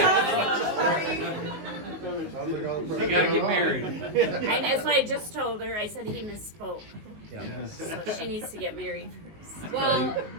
You gotta get married. And that's what I just told her. I said he misspoke. Yeah. So she needs to get married first. Well,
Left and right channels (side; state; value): left; late; 19 ms